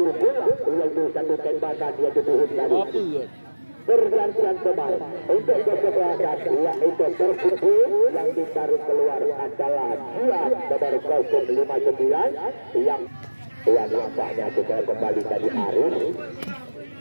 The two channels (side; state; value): both; inverted; correlation -1.00